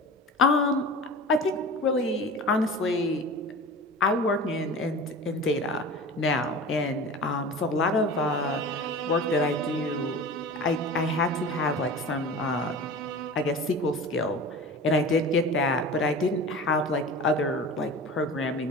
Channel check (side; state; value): both; normal; correlation 0.35